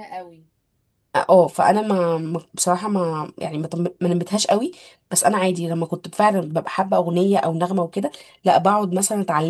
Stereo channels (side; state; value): both; identical; correlation 1.00